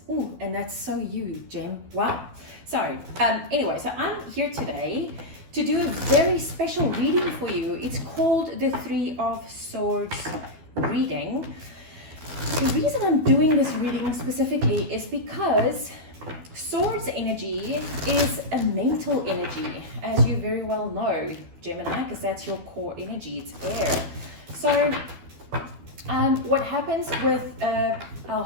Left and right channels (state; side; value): late; left; 12 ms